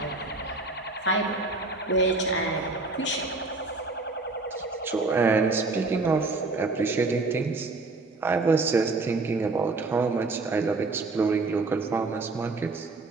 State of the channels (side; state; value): left; quieter; 3.5 dB